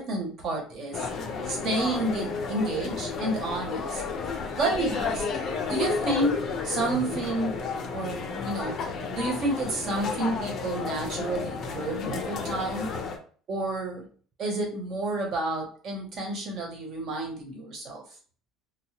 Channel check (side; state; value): both; normal; correlation 0.45